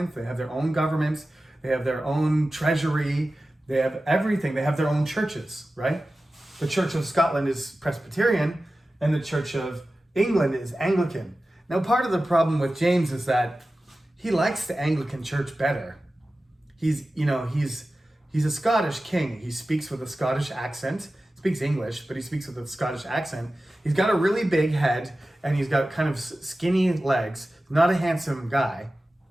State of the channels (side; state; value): both; normal; correlation 0.95